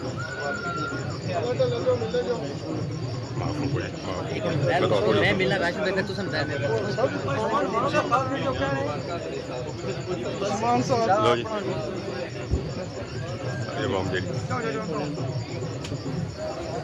मैं मिला राशन देकर तू समझा दे लो जी ये बम जी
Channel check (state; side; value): identical; both; correlation 1.00